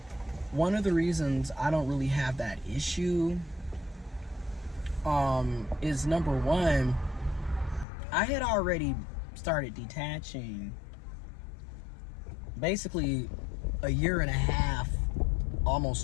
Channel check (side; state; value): right; drops out; at 7.9 s